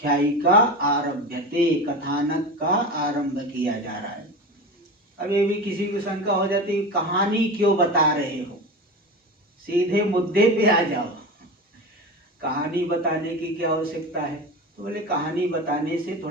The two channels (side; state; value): both; normal; correlation 0.27